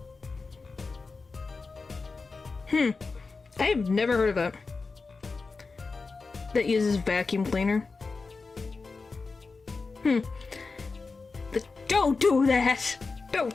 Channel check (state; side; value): quieter; right; 4.2 dB